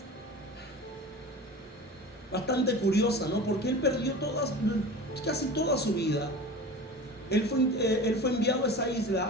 bastante curiosa, ¿no? Porque él perdió casi toda su vida. Él fue enviado a esa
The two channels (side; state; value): both; normal; correlation 0.34